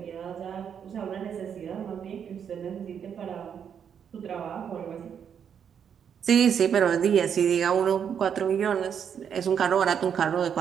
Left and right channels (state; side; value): quieter; left; 7.9 dB